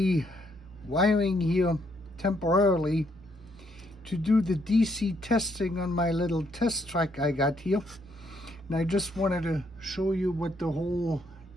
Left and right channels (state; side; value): normal; both; correlation 0.72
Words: wiring here temporarily to do the DC testing on my little test track I got here. And I just wanted to show you what the whole